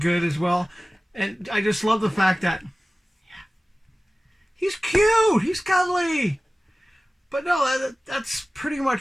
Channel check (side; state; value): both; normal; correlation 0.97